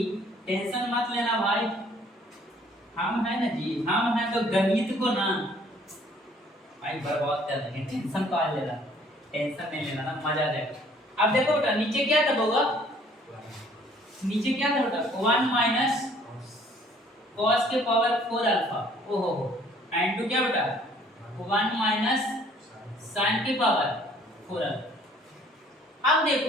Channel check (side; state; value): both; normal; correlation 0.58